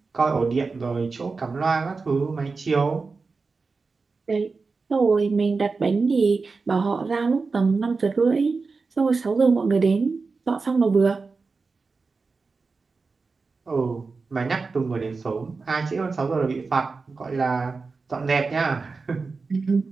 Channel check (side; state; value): left; quieter; 4.3 dB